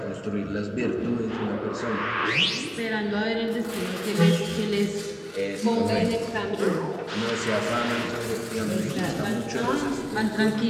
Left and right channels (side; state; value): both; identical; correlation 1.00